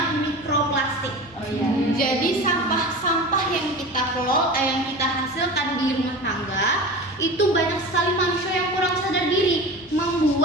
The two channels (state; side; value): normal; both; correlation 0.32